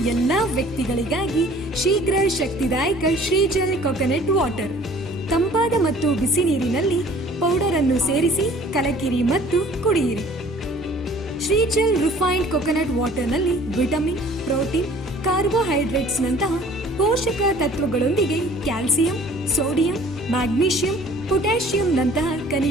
ಎಲ್ಲಾ ವ್ಯಕ್ತಿಗಳಿಗಾಗಿ ಶೀಘ್ರ ಶಕ್ತಿದಾಯಕ ಶ್ರೀಜಲ್ ಕೊಕೊನಟ್ ವಾಟರ್. ತಂಪಾದ ಮತ್ತು ಬಿಸಿ ನೀರಿನಲ್ಲಿ ಪೌಡರ್ ಅನ್ನು ಸೇರಿಸಿ ಕಲಕಿರಿ ಮತ್ತು ಕುಡಿಯಿರಿ. ಶ್ರೀಜಲ್ ರಿಫೈನ್ಡ್ ಕೊಕೊನಟ್ ವಾಟರ್ನಲ್ಲಿ ವಿಟಮಿನ್, ಪ್ರೋಟೀನ್, ಕಾರ್ಬೋಹೈಡ್ರೇಟ್ಸ್ ನಂತಹ ಪೋಷಕ ತತ್ವಗಳೊಂದಿಗೆ ಕ್ಯಾಲ್ಸಿಯಂ, ಸೋಡಿಯಂ, ಮ್ಯಾಗ್ನೀಷಿಯಂ, ಪೊಟ್ಯಾಷಿಯಂ ನಂತಹ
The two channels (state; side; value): normal; both; correlation 0.52